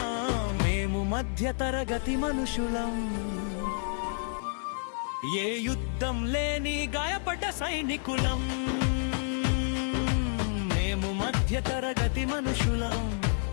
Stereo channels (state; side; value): silent; right; digital silence